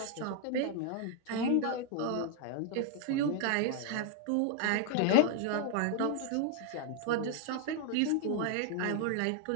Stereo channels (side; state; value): both; different; correlation 0.00